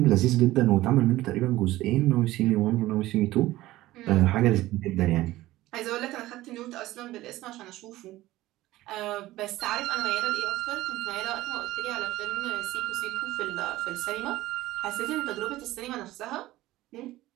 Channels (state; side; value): quieter; left; 16.7 dB